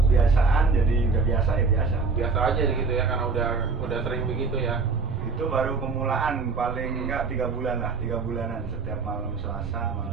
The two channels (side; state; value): left; quieter; 4.6 dB